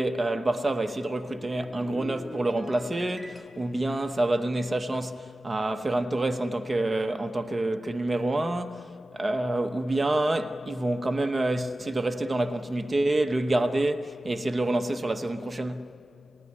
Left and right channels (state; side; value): normal; both; correlation 0.95